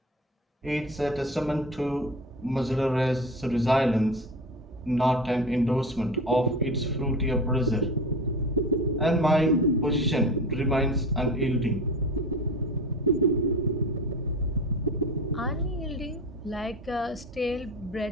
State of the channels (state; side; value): normal; both; correlation 0.31